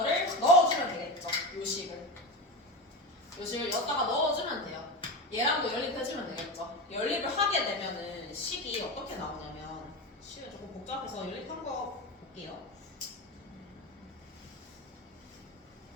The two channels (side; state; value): both; normal; correlation 0.21